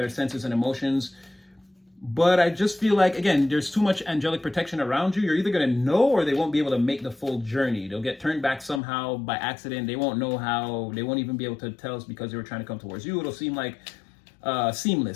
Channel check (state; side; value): drops out; right; at 8.8 s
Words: senses and emotions. But I just feel like, again, there's too much angelic protection around you. You're either going to know or they won't be able to make the full journey. They'll get turned back somehow by accident. They won't know how. They won't even be able to tell us because they were trying to come towards you. It'll seem like